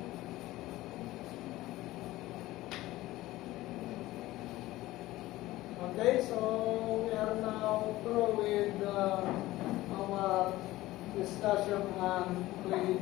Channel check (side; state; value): right; quieter; 17.2 dB